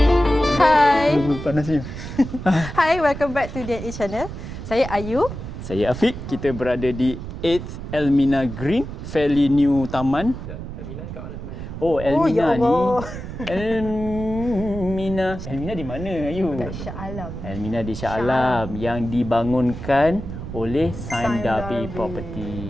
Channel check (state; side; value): noise; right; rumble, 9 dB below the sound